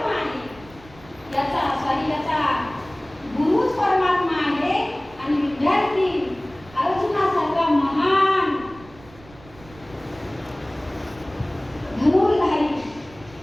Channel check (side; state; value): right; noise; rumble, 23 dB below the sound